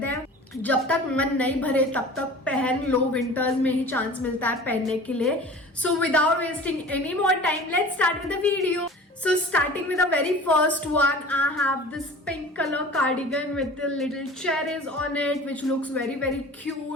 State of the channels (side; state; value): both; normal; correlation 0.41